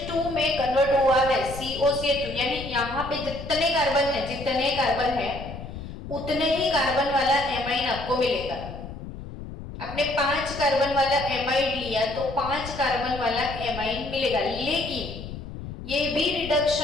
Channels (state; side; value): noise; left; rumble, 11 dB below the sound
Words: में कन्वर्ट हुआ है, COCH2, यानी यहाँ पे जितने कार्बन है उतने ही कार्बन वाला एमाइन आपको मिलेगा। आपने 5 कार्बन वाला एमाइड लिया तो 5 कार्बन वाला एमाइन मिलेगा, लेकिन ये भी